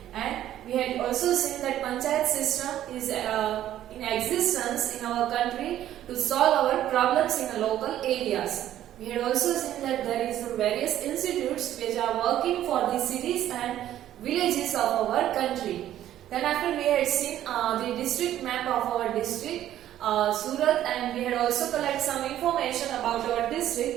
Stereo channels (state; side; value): quieter; left; 12.2 dB